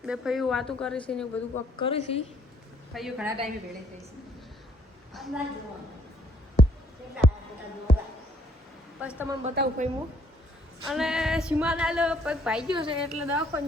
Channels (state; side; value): normal; both; correlation 0.66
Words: બે ફઈઓ વાતું કરે છે ને બધું કોક કરે છે। ફઈઓ ઘણા ટાઈમે ભેળે થઈ છે, બસ તમને બતાવું ફઈ હું। અને સીમાના પગ ભાઈ ગયો છે એટલે